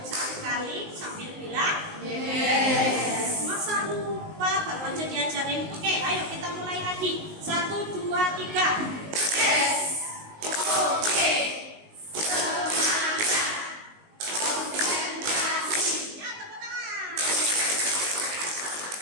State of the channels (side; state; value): left; late; 19 ms